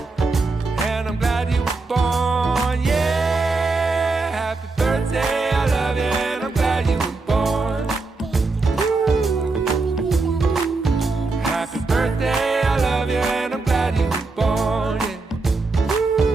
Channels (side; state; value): left; quieter; 3.7 dB